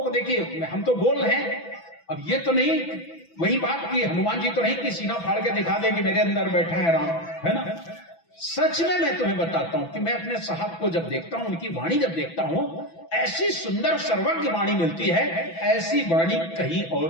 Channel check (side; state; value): right; late; 6.0 ms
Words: देखिए, हम तो बोल रहे हैं, अब ये तो नहीं वही बात कि हनुमान जी तो नहीं कि सीना फाड़ के दिखा दे कि मेरे अंदर बैठा है राम, है ना। सच में मैं तुम्हें बताता हूं कि मैं अपने साहब को जब देखता हूं, उनकी वाणी जब देखता हूं, ऐसी सुंदर सर्वज्ञ वाणी मिलती है, ऐसी वाणी कहीं